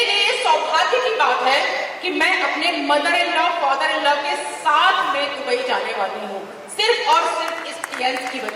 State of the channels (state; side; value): identical; both; correlation 1.00